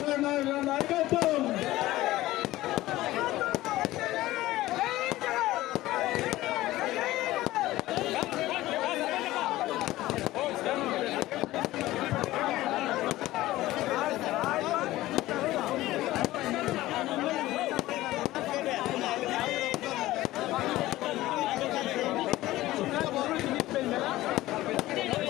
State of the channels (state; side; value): quieter; right; 16.6 dB